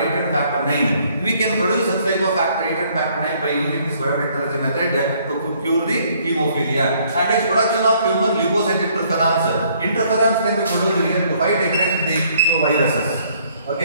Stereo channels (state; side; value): inverted; both; correlation -0.64